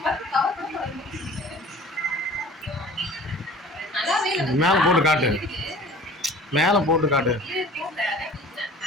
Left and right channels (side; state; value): both; normal; correlation 0.45